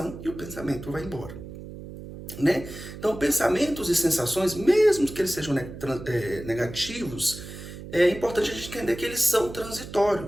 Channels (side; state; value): right; noise; hum, 12 dB below the sound